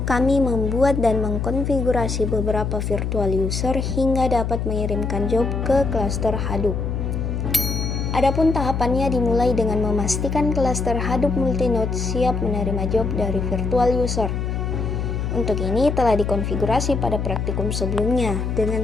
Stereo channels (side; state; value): left; noise; hum, 2 dB below the sound